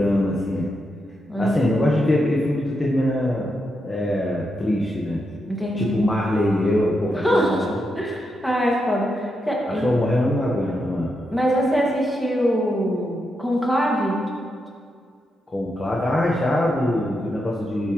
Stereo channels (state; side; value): normal; both; correlation 0.84